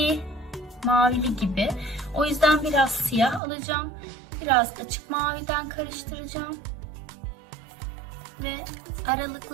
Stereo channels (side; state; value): left; drops out; at 3.4 s